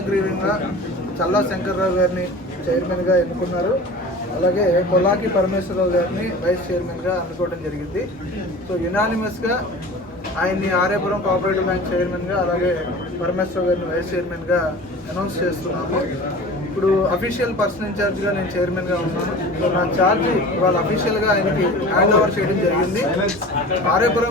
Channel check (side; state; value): both; normal; correlation 0.38